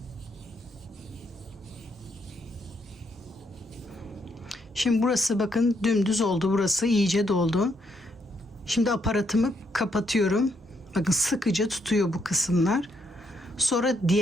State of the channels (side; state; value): both; normal; correlation 0.75